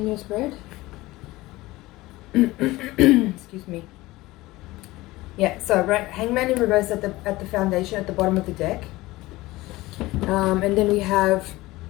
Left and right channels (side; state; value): right; quieter; 19.2 dB